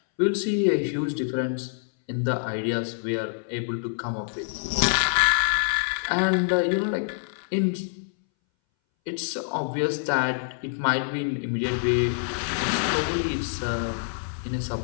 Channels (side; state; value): right; silent; 60 dB below the other